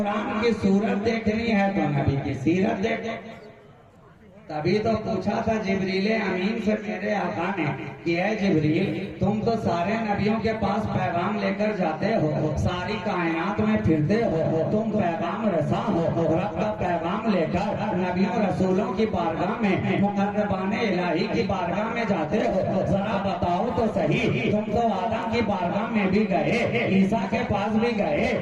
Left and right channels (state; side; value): identical; both; correlation 1.00